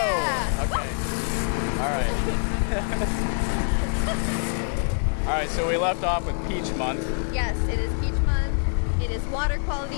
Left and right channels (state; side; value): silent; right; 62 dB below the other